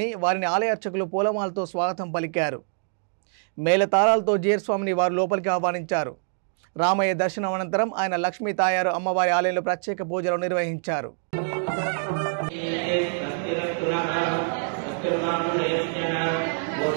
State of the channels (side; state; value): left; silent; digital silence